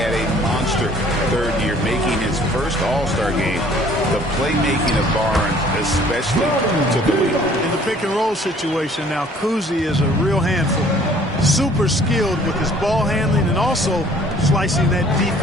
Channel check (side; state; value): both; normal; correlation 0.55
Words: a monster third year, making his first All-Star game. The playmaking of Barnes especially took the lead. In the pick-and-roll situation now, Kuzi is a real handful. Super skilled with his ball handling and also slicing that